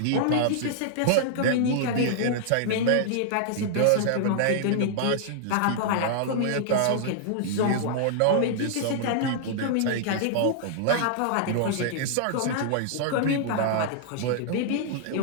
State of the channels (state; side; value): different; both; correlation -0.01